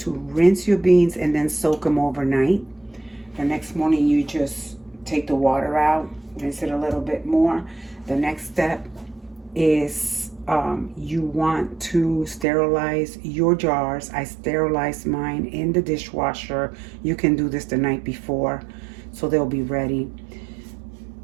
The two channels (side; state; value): left; drops out; at 12.5 s